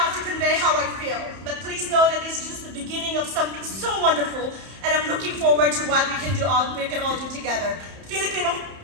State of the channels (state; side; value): late; left; 31 ms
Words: to convey how I feel, but please know that this is just the beginning of something so wonderful, and I'm looking forward to what we can all do together. Filipino